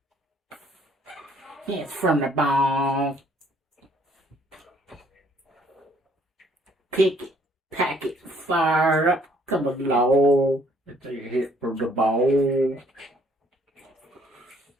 It's from the bone. Pick it, pack it, fire up, come along. It's a hit from the bone.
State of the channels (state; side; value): normal; both; correlation 0.63